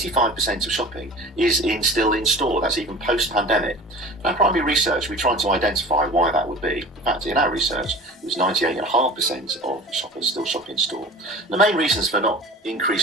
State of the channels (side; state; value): both; normal; correlation 0.40